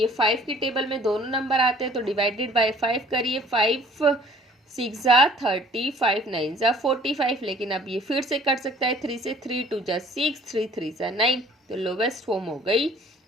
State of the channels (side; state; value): both; normal; correlation 0.54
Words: 5 की टेबल में दोनों नंबर आते हैं, तो डिवाइडेड बाय 5 करिए। 5 6 जा 30, 5 9 जा 45, लेकिन अब ये फिर से कट सकता है 3 से। 3 2 जा 6, 3 3 जा 9, तो लोवेस्ट फॉर्म हो गई